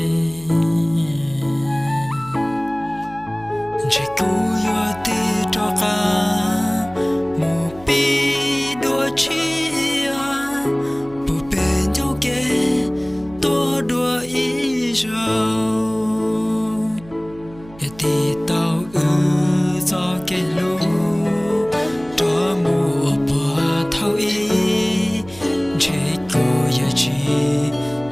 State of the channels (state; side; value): noise; right; hum, 21 dB below the sound